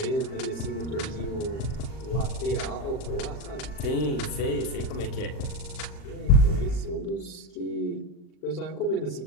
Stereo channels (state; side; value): late; right; 39 ms